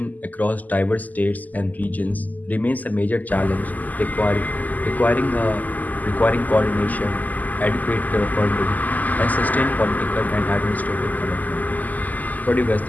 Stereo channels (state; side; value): late; right; 0.081 ms